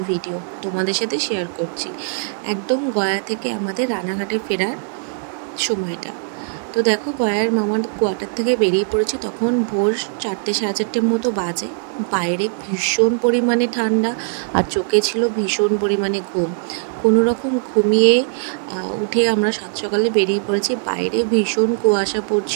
ভিডিও তোমাদের সাথে শেয়ার করছি। একদম গয়া থেকে আমাদের রানাঘাটে ফেরার সময়টা। তো দেখো, গয়ার মামার কোয়ার্টার থেকে বেরিয়ে পড়েছি, তখন ভোর 4টে সাড়ে 4টের মতো বাজে। বাইরে ভীষণ পরিমাণে ঠান্ডা আর চোখে ছিল ভীষণ পরিমাণে ঘুম। কোনো রকম ঘুমিয়ে উঠে আমরা সাত সকালে বেরিয়ে পড়েছি। বাইরে ভীষণ কুয়াশা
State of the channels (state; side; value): silent; left; digital silence